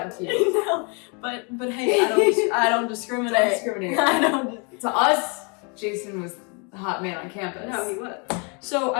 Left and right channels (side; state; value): right; quieter; 34.4 dB